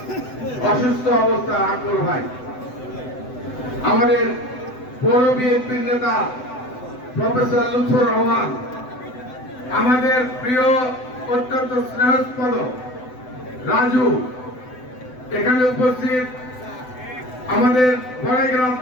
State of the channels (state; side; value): late; right; 7.9 ms